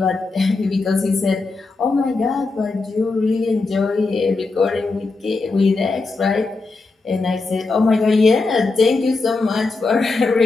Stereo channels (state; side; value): quieter; right; 3.7 dB